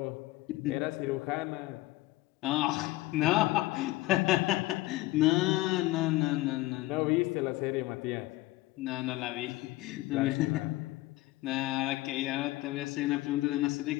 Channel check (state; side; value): quieter; right; 18.8 dB